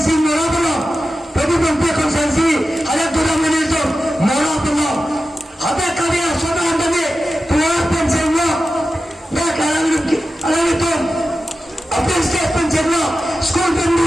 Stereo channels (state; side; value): normal; both; correlation 0.92